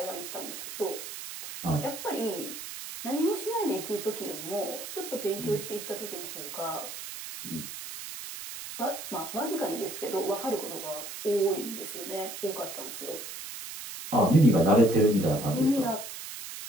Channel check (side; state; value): right; noise; hiss, 9 dB below the sound